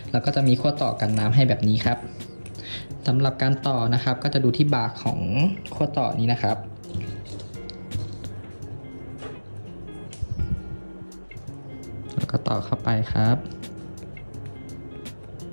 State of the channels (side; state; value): both; inverted; correlation -1.00